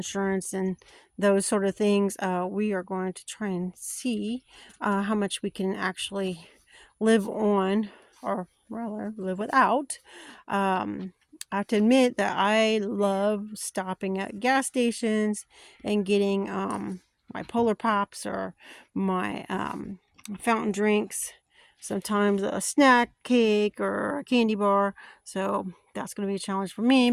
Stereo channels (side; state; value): both; identical; correlation 1.00